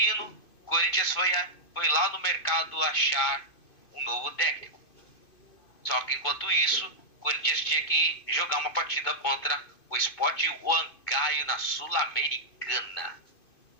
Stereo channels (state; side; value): late; right; 2.5 ms